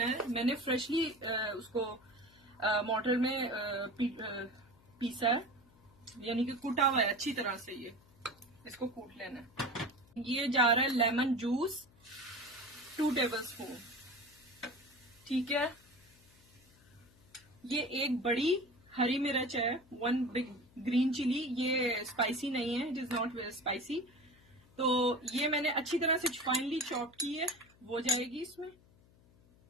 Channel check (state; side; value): noise; left; hum, 28 dB below the sound